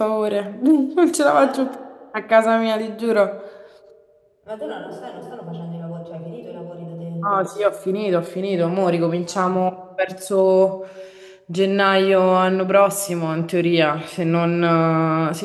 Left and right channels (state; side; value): identical; both; correlation 1.00